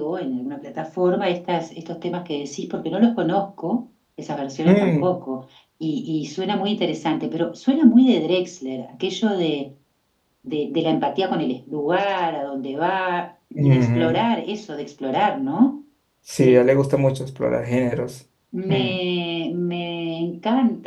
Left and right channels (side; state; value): both; identical; correlation 1.00